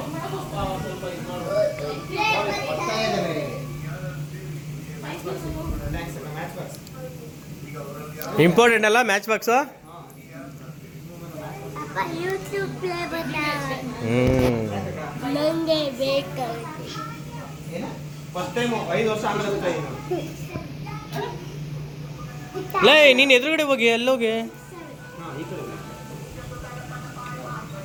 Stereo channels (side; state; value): both; identical; correlation 1.00